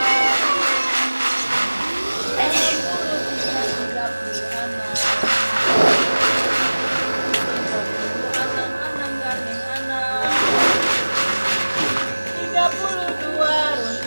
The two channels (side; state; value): both; inverted; correlation -1.00